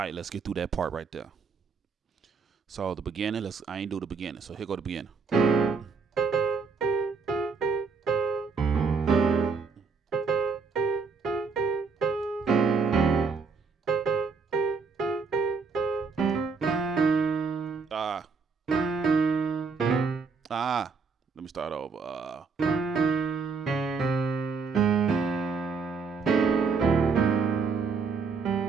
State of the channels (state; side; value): quieter; left; 5.1 dB